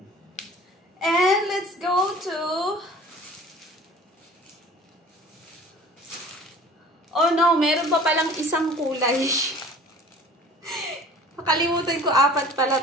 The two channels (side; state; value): both; normal; correlation 0.45